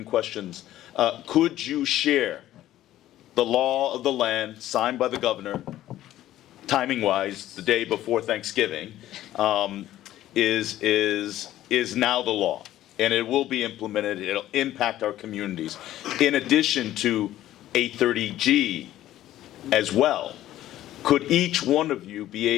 questions, could you share the law of the land signed by the governor, timing-wise, the day before Thanksgiving, is now the law, and it will be implemented. It'll impact our communities. In addition to 830G as well, could each one of you be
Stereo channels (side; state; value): right; quieter; 13.6 dB